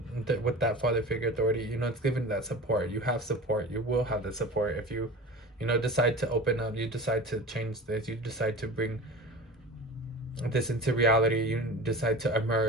with that father figure authority, you know, it's given that support. You have support. You will have the support if you, you know, decide to open up. You decide to change this. You decide to bring this into reality. You decide to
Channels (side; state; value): both; normal; correlation 0.34